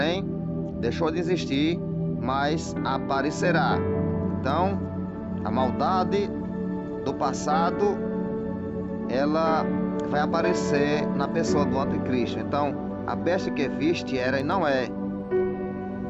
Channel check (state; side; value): identical; both; correlation 1.00